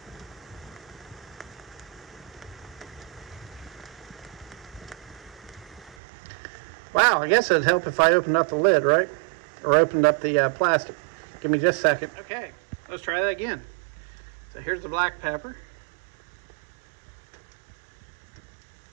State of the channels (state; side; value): drops out; left; at 6.0 s